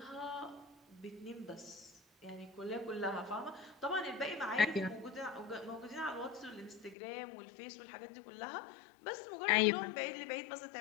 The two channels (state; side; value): drops out; right; at 7.0 s